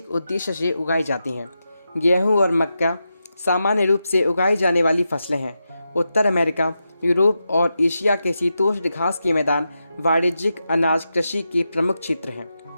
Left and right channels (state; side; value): inverted; both; correlation -0.88